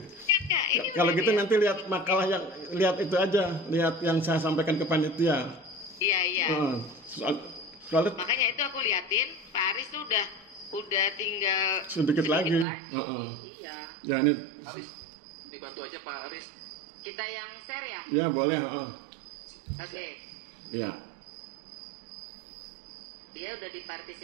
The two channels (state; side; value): drops out; left; at 12.7 s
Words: Ya, ini Kalau udah gitu dia. nanti lihat makalah yang lihat itu aja, lihat yang saya sampaikan ke panitia. Iya. Soalnya Makanya itu aku liatin, Pak Aris tuh udah tinggal sedikit lagi. nih. Iya. Ya ini. Aris, dibantu aja Pak Aris. Kita yang share ya? Ya boleh. Oke. Ya. Dia udah